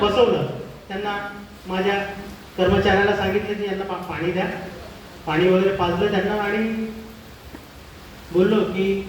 त्यांना माझ्या कर्मचाऱ्याला सांगितलं की यांना पाणी द्या, पाणी वगैरे पाजलं त्यांना आणि बोललो की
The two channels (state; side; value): identical; both; correlation 1.00